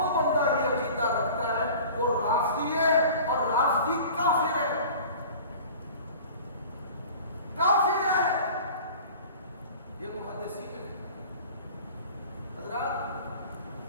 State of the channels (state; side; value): inverted; both; correlation -0.42